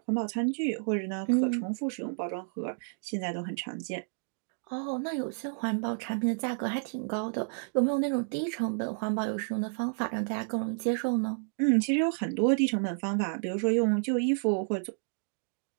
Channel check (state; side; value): silent; left; digital silence